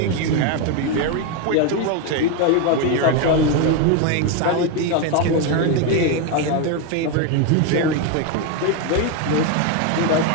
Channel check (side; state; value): both; different; correlation 0.02